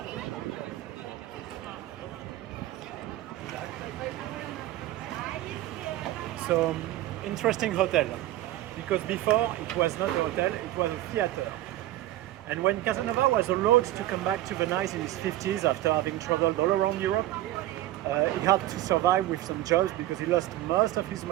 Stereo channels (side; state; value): left; quieter; 15.0 dB